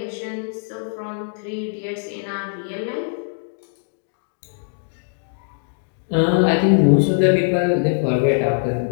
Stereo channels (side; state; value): right; silent; digital silence